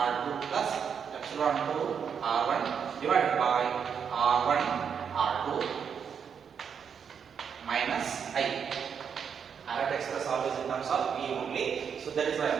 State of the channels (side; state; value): left; quieter; 7.1 dB